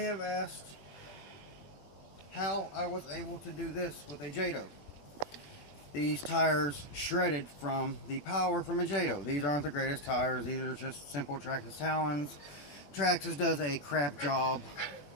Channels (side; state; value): right; late; 21 ms